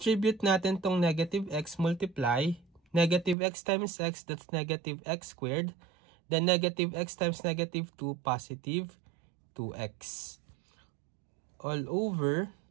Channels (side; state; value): left; drops out; at 3.4 s